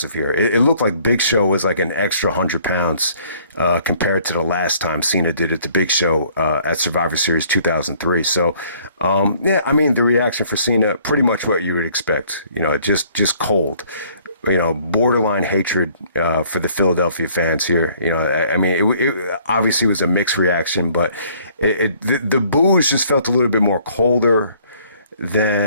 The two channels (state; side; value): inverted; both; correlation -0.60